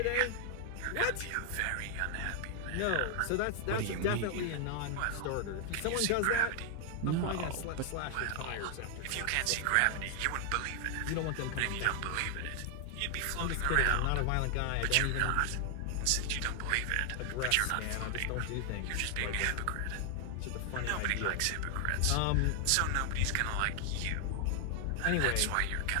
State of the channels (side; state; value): both; different; correlation 0.00